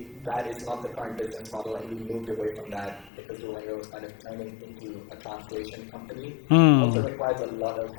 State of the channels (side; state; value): right; drops out; at 3.1 s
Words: that is not the current business model, and we moved away from that because Duolingo was kind of turning into a translation company. Also requires a lot of